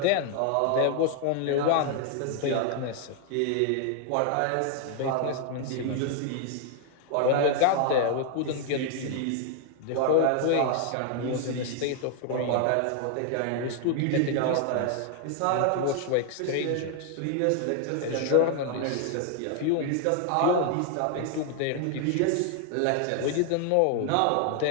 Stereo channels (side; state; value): both; different; correlation 0.00